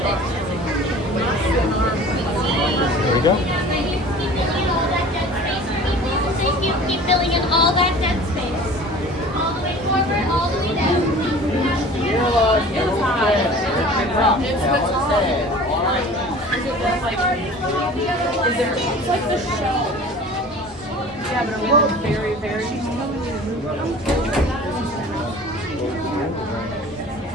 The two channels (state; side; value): normal; both; correlation 0.43